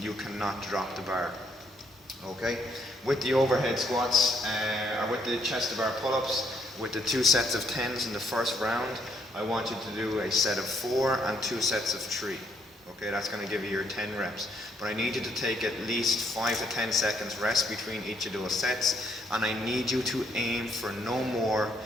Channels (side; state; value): both; normal; correlation 0.71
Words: You cannot drop the bar, okay? With the overhead squats, or with the chest to bar pull-ups, with the 2 sets of 10s in the first round, I want you to do a set of 4 and 2 sets of 3. Okay, that's going to give you your 10 reps. But I need you to take at least 5 to 10 seconds rest between each of those sets, and I need you to aim for no more